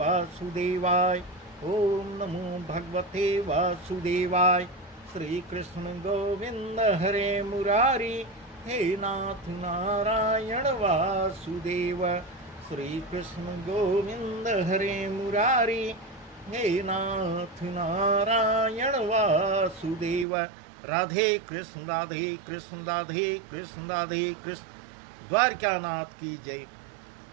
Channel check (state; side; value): drops out; left; at 20.2 s